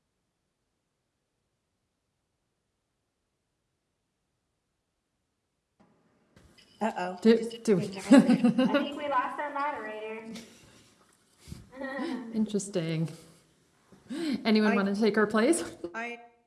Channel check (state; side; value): identical; both; correlation 1.00